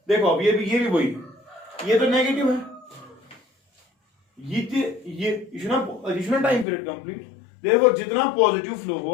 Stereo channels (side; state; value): right; drops out; at 6.7 s